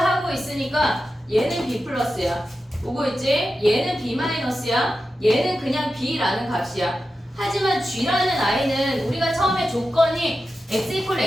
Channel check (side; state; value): both; normal; correlation 0.91